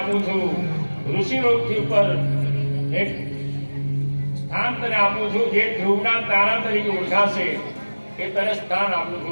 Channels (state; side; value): inverted; both; correlation -1.00